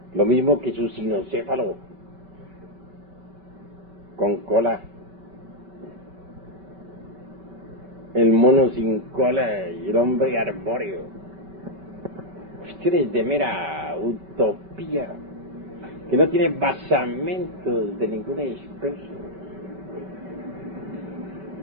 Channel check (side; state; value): left; late; 5.2 ms